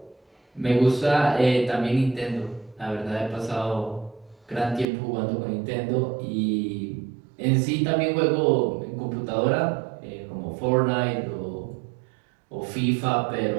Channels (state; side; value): drops out; left; at 4.9 s